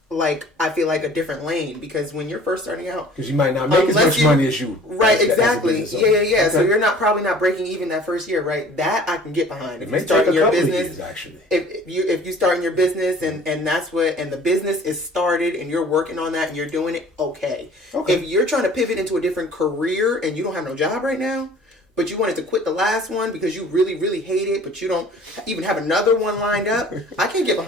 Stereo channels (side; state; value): both; normal; correlation 0.49